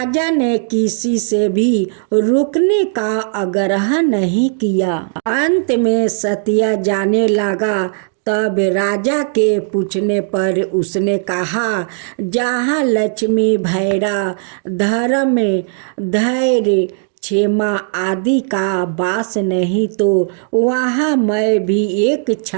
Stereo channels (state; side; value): silent; left; digital silence